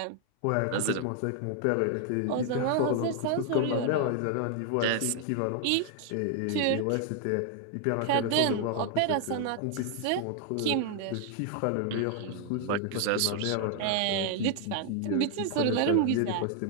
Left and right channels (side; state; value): both; different; correlation 0.00